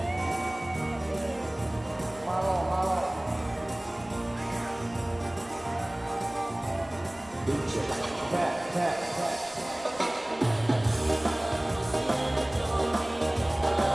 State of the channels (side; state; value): right; noise; rumble, 24 dB below the sound